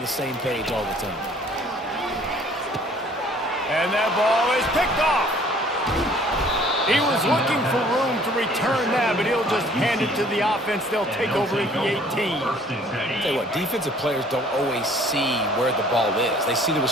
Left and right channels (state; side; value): normal; both; correlation 0.55